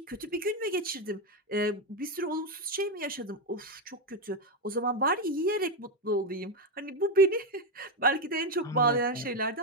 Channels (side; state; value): both; normal; correlation 0.08